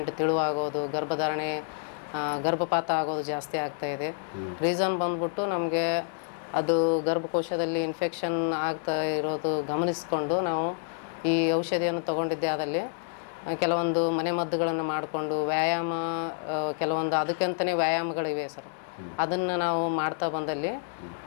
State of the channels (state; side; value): silent; right; digital silence